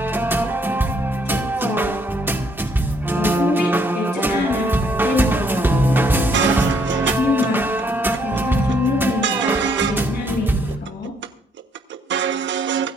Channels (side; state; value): both; normal; correlation 0.69